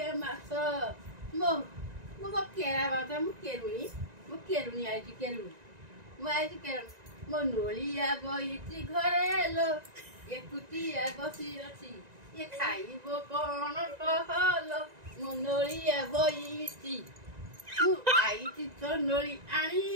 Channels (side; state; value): left; late; 1.9 ms